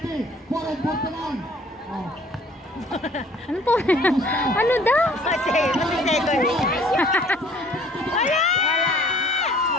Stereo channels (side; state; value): both; normal; correlation 0.56